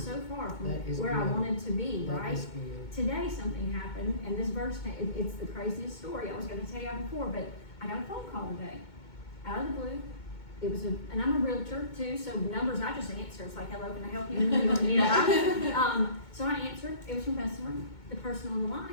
so far from That is where I good. wanted to be, That right? is good. Today something happened, and this verse, it's the craziest story. I was gonna tell you before, but I got a phone call today, out of the blue. It was and I'm a realtor too, so numbers I just answer. It's like, hello, can I help you? You know, so I answered. It was from Bessemer. The person on the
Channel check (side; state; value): right; late; 2.2 ms